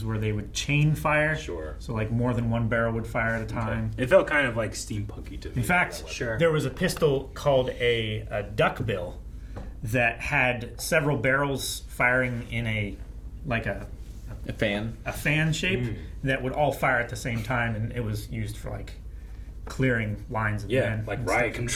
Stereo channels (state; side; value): identical; both; correlation 1.00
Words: where they would chain fire. Sure. So like more than one barrel would fire at a time. It felt kind of like steampunky to me. In fact, there was a pistol called a duckbill that had several barrels firing in a fan shape that would all fire at the same time, and it was used for like clearing lines of men. like and riot stuff.